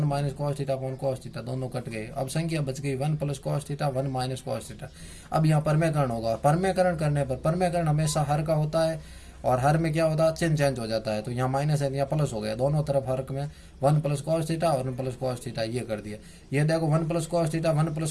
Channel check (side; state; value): both; identical; correlation 1.00